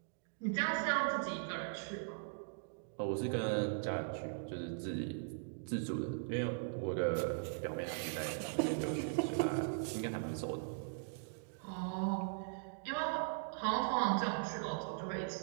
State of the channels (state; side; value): silent; left; digital silence